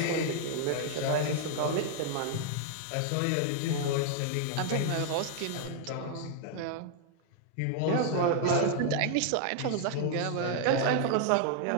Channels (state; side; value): different; both; correlation 0.00